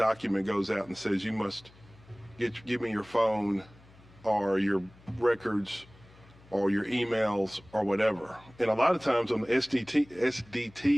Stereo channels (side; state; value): left; noise; hum, 25 dB below the sound